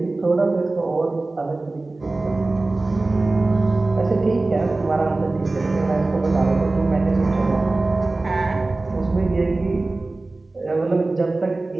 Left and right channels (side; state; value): left; quieter; 3.2 dB